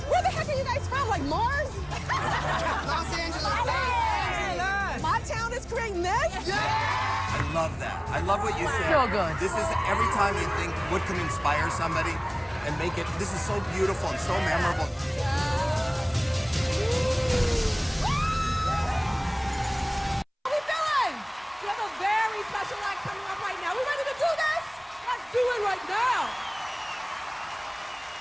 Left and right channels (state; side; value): identical; both; correlation 1.00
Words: Where the heck are you guys from? Like Mars? Los Angeles. My town is creating this? I love that. I love what you said. So good. This is every time you think what can inspire somebody and make it. This is so beautiful and so memorable. How we feeling? We have a very special act coming up right now. We ready to do this? Let's do it right now.